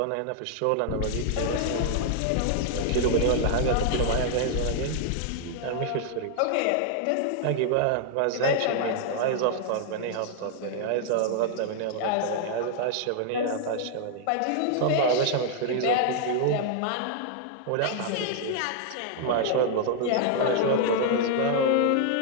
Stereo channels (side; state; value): both; different; correlation -0.01